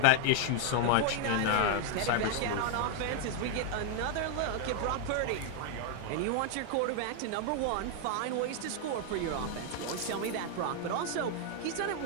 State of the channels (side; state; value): both; different; correlation 0.00